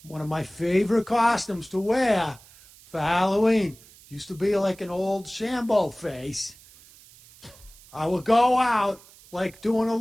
One of my favorite costumes to wear for Halloween. used to be like an old Sambo face. I would go out like doing a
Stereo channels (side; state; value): right; noise; hiss, 24 dB below the sound